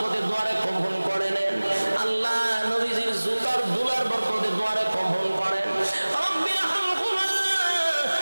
দুয়ারে কবুল করে নেন। আল্লাহ নবীজির জুতার দুলার বরকতে দুয়ারে কবুল করেন। রব্বির হামহুমা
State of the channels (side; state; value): both; inverted; correlation -1.00